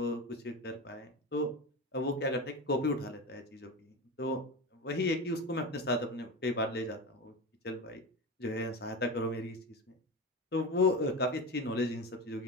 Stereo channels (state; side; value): normal; both; correlation 0.24